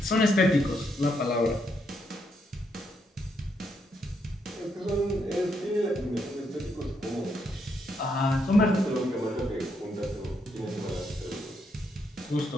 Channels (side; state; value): both; normal; correlation 0.77